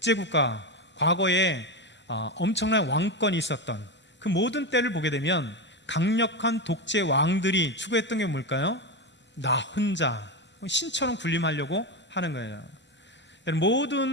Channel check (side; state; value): both; normal; correlation 0.15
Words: 과거에 엄청난 왕권이 있었던 그 모든 때를 보게 되면 강력한 독재 왕들이 추구했던 게 뭘까요? 나 혼자 신처럼 군림하려고 하는 거예요.